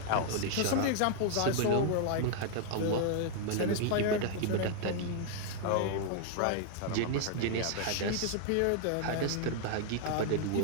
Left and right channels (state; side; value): different; both; correlation 0.00